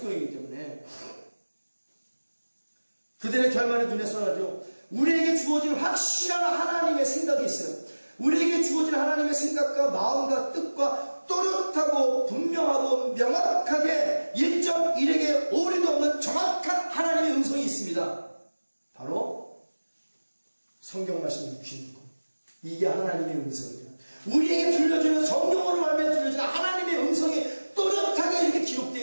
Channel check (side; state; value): both; inverted; correlation -1.00